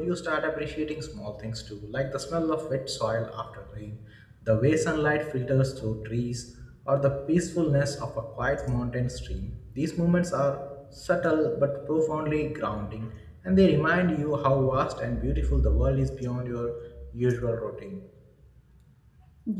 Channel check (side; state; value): both; identical; correlation 1.00